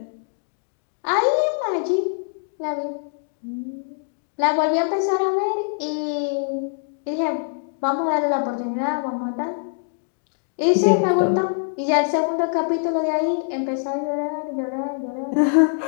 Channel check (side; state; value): right; silent; digital silence